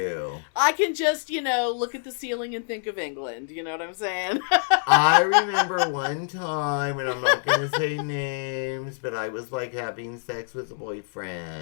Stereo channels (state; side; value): silent; right; 61 dB below the other